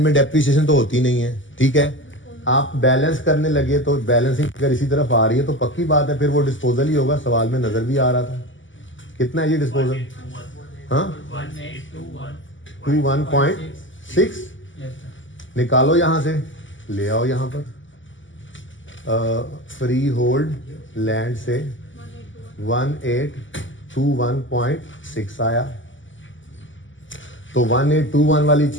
में डेप्रिसिएशन तो होती नहीं है, ठीक है। आप बैलेंस करने लगे तो बैलेंसिंग अगर इसी तरफ आ रही है तो पक्की बात है फिर वो डिस्पोजल ही होगा। सवाल में नजर भी आ रहा था। कितना है ये डिस्पोजल? हाँ 21.6 निकालो यहां से, ले आओ यहां पर। फ्री होल्ड लैंड से 1821.6 आया। तो 1821 वाली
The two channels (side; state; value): right; late; 0.55 ms